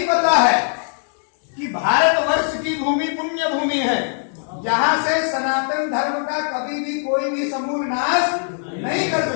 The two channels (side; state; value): right; silent; digital silence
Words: पता है कि भारतवर्ष की भूमि पुण्य भूमि है, जहां से सनातन धर्म का कभी भी कोई भी समूल नाश नहीं कर